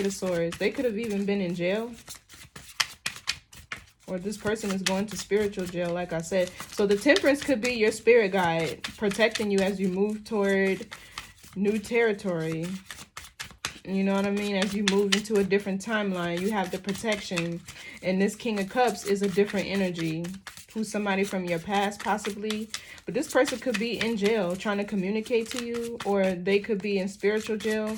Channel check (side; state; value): both; identical; correlation 1.00